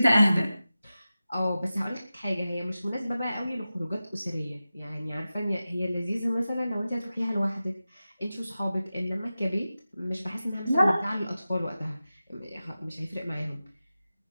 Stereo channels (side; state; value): both; inverted; correlation -0.94